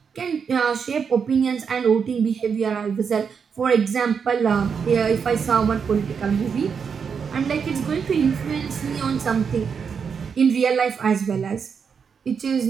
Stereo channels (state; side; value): quieter; left; 6.4 dB